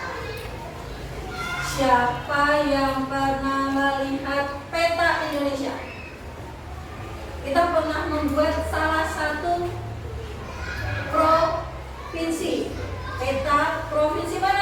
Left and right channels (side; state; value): both; identical; correlation 1.00